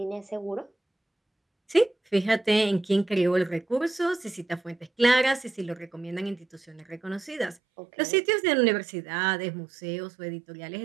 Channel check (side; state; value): left; drops out; at 7.6 s